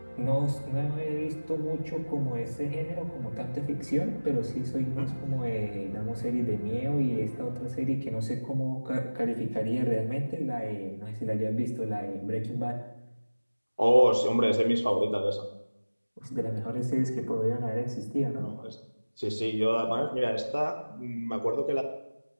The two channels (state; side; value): inverted; both; correlation -1.00